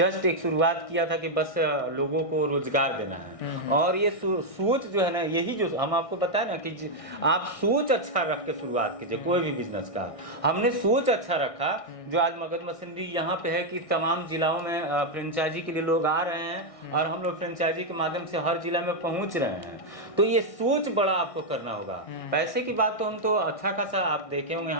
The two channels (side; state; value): right; late; 1.6 ms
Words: एक शुरुआत किया था कि बस लोगों को रोजगार देना है। और ये सोच जो है ना, यही जो हम आपको बताए ना कि आप सोच अच्छा रख के शुरुआत कीजिए कोई भी बिजनेस का। हमने सोच अच्छा रखा, जो आज मगध मशीनरी यहाँ पे है कि तमाम जिलाओं में फ्रेंचाइजी के लिए लोग आ रहे हैं और हम लोग फ्रेंचाइजी के माध्यम से हर जिला में पहुँच रहे हैं। तो ये सोच बड़ा आपको करना होगा। पैसे की बात तो हम तो अच्छा खासा आप देखे होंगे,